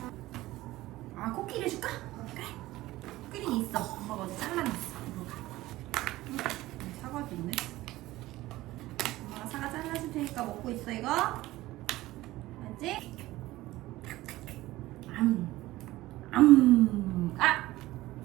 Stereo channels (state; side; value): quieter; left; 17.3 dB